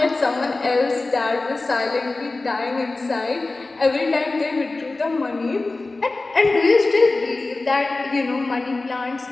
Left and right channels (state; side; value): quieter; right; 3.3 dB